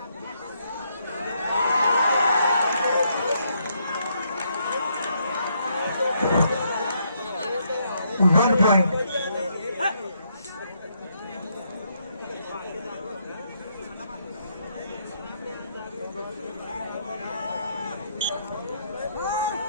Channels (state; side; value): inverted; both; correlation -0.74